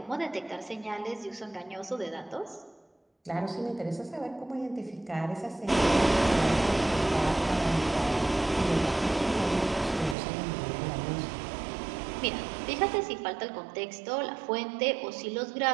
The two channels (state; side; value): drops out; left; at 10.2 s